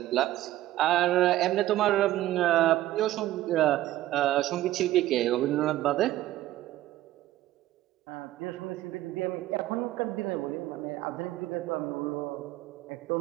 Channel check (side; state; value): left; quieter; 14.9 dB